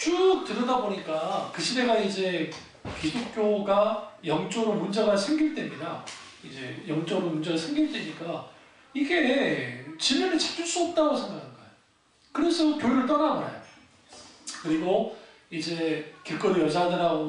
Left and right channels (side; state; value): both; identical; correlation 1.00